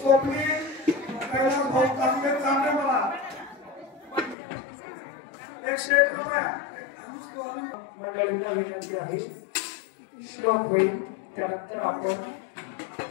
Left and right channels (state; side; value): drops out; right; at 4.4 s